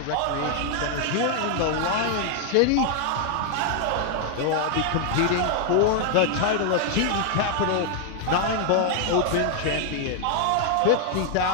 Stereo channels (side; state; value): both; different; correlation 0.00